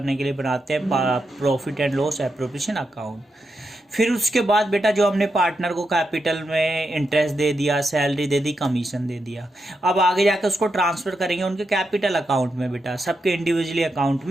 के लिए बनाते हैं profit and loss appropriation account. फिर उसके बाद बेटा जो हमने पार्टनर को कैपिटल में इंटरेस्ट दे दिया, सैलरी दे दी, कमीशन दे दिया, अब आगे जाकर उसको ट्रांसफर करेंगे उनके कैपिटल अकाउंट में। बेटा सबके इंडिविजुअली अकाउंट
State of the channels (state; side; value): normal; both; correlation 0.85